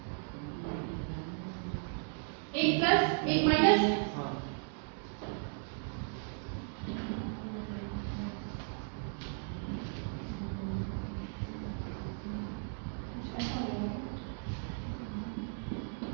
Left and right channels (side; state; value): left; silent; 54 dB below the other